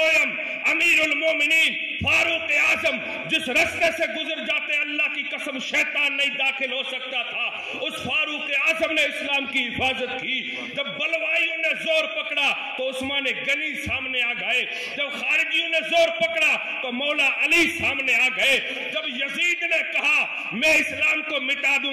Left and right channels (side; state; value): both; identical; correlation 1.00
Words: امیر المومنین فاروق اعظم جس رستے سے گزر جاتے اللہ کی قسم شیطان نہیں داخل ہو سکتا تھا, اس فاروق اعظم نے اسلام کی حفاظت کی. جب بلوائیوں نے زور پکڑا تو عثمان غنی سامنے آ گئے, جب خارجیوں نے زور پکڑا تو مولا علی سامنے آ گئے, جب یزید نے کہا میں اسلام کو مٹا